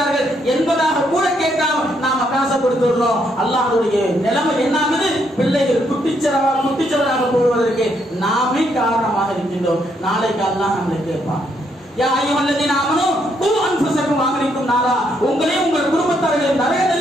என்பதாக கூட கேட்காம நாம காசை கொடுத்துடுறோம். அல்லாஹ்வுடைய நிலைமை என்ன ஆகுது? பிள்ளைகள் குட்டிச்சவராக போவதற்கு நாமே காரணமாக இருக்கின்றோம். நாளைக்கு அல்லாஹ் நம்மளை கேட்பான், யா அய்யுஹல்லதீன ஆமனூ கூ அன்ஃபுஸக்கும் வஅஹ்லிக்கும் நாரா, உங்களையும் உங்கள் குடும்பத்தார்களையும் நரக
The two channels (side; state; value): both; normal; correlation 0.74